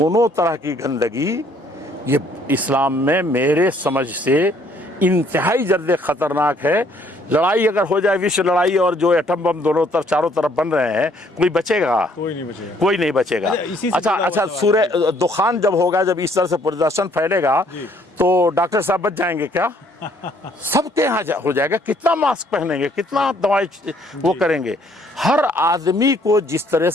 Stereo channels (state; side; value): normal; both; correlation 0.64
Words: तरह की गंदगी ये इस्लाम में मेरे समझ से इंतहाई जल्द ख़तरनाक है। लड़ाई अगर हो जाए, विश्व लड़ाई, और जो एटम बम दोनों तरफ चारों तरफ बन रहे हैं, कोई बचेगा? कोई नहीं बचेगा। अच्छा, सूर्य दुखान जब होगा, जब इस तरह से प्रदर्शन फैलेगा, तो डॉक्टर साहब बच जाएंगे क्या? सबके यहाँ हो जाएगा। कितना मास्क पहनेंगे, कितना दवाई वो करेंगे। हर आदमी को जिस तरह